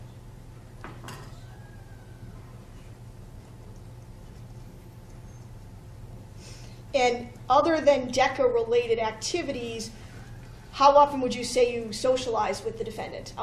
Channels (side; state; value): both; identical; correlation 1.00